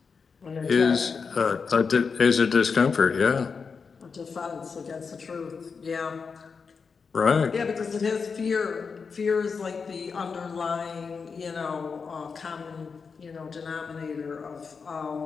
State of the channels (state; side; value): quieter; right; 5.3 dB